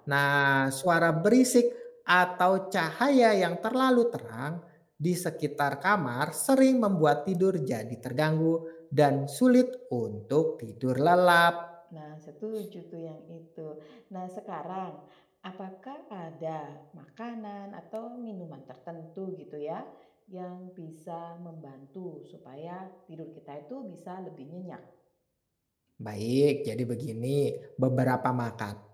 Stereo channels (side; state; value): both; identical; correlation 1.00